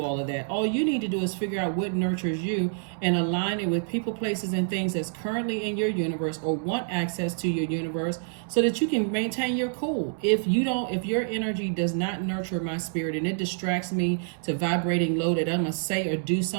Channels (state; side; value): silent; left; 60 dB below the other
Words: all of that. All you need to do is figure out what nurtures you and align it with people, places, and things that's currently in your universe or want access to your universe, so that you can maintain your cool. If your energy does not nurture my spirit and it distracts me to vibrating low that I'm gonna say or do